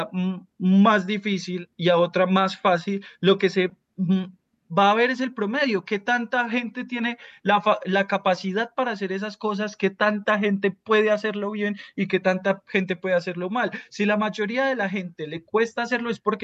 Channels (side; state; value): both; identical; correlation 1.00